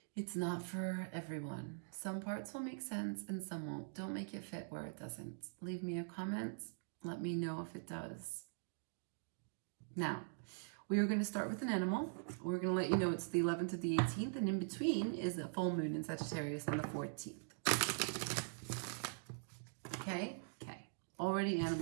It's not for everyone. Some parts will make sense and some won't. Don't make it fit where it doesn't. Leave me a comment. Let me know if it does. Now, we are going to start with an animal. We're going to let you know it's the 11th to the 18th, and in between is a full moon in Sagittarius on the 14th. Okay? Okay. Already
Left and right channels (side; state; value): left; silent; digital silence